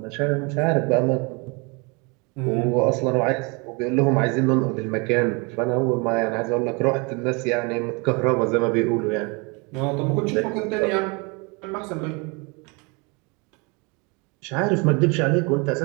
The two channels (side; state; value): left; quieter; 30.1 dB